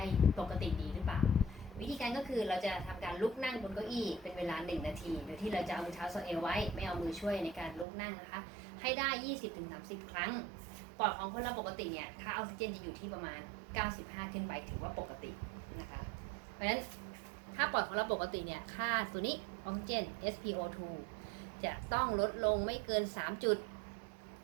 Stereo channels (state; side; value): drops out; left; at 7.9 s